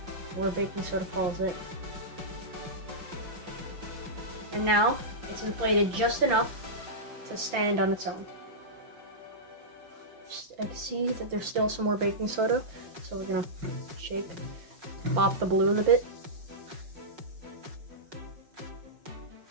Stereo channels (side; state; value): left; late; 5.9 ms